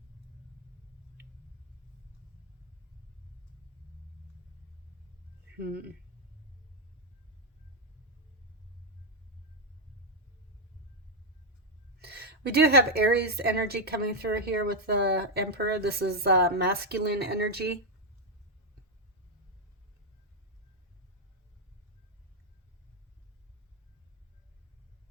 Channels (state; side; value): normal; both; correlation 0.00